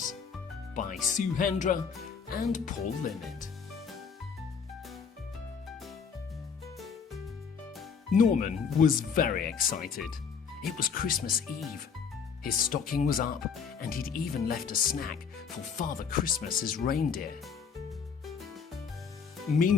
by HENDRA and Paul LINNET. Norman was very excited. It was Christmas Eve. His stocking was up and he'd even left a snack for Father Christmas's reindeer.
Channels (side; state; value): right; quieter; 6.3 dB